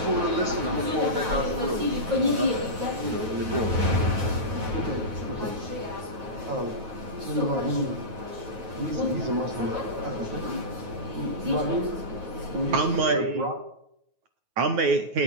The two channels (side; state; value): left; late; 9.3 ms